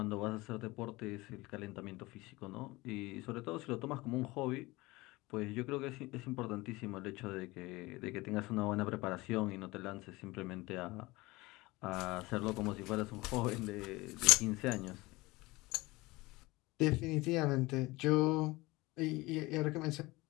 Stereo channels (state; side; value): quieter; right; 21.5 dB